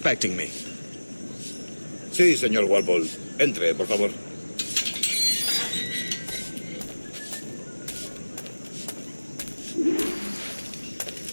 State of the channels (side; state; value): both; inverted; correlation -1.00